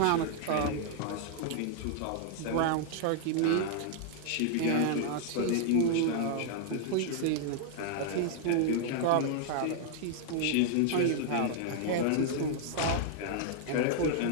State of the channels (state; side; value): different; both; correlation 0.00